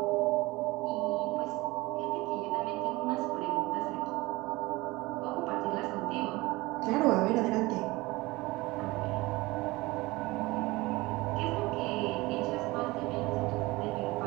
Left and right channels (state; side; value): quieter; left; 21.4 dB